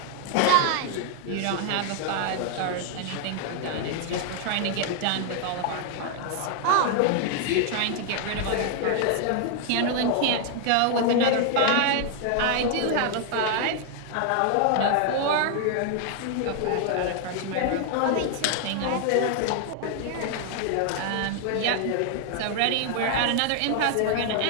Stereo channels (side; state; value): both; different; correlation 0.00